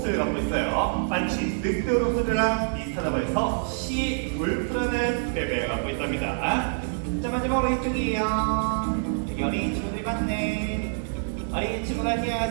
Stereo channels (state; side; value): silent; left; digital silence